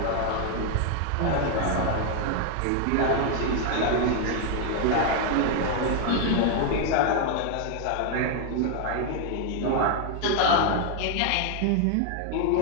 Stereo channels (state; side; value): different; both; correlation 0.00